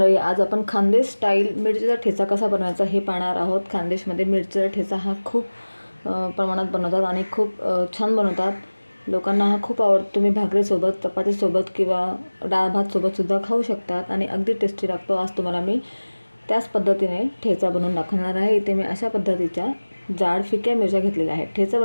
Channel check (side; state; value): both; inverted; correlation -1.00